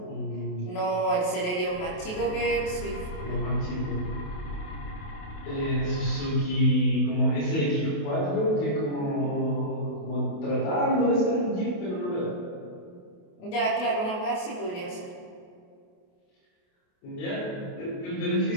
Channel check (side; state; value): right; late; 28 ms